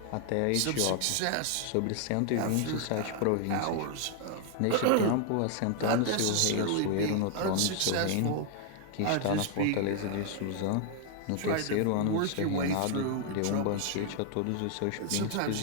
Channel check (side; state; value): both; different; correlation 0.00